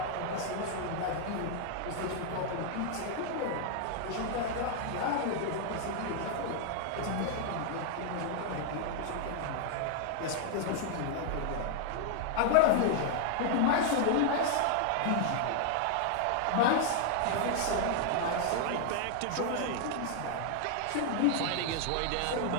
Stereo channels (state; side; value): different; both; correlation 0.00